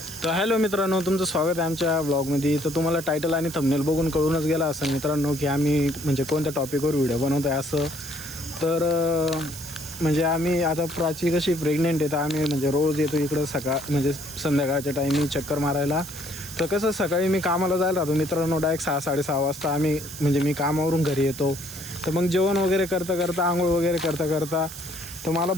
तर हॅलो मित्रांनो, तुमचं स्वागत आहे आमच्या ब्लॉगमध्ये. तर तुम्हाला टायटल आणि थंबनेल बघून कळूनच गेला असं मित्रांनो की आम्ही म्हणजे कोणत्या टॉपिकवर व्हिडिओ बनवत आहे असं. तर म्हणजे आम्ही आता प्राची कशी प्रेग्नेंट आहे तर आम्ही म्हणजे रोज येतो इकडं म्हणजे संध्याकाळच्या टाईमी चक्कर मारायला. तर कसं सकाळी मी कामाला जायला राहतो मित्रांनो, डायरेक्ट 6-6:30 वाजता म्हणजे मी कामावरून घरी येतो. तर मग जेवण वगैरे करता आंघोळ वगैरे करता तर मला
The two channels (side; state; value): right; noise; hiss, 12 dB below the sound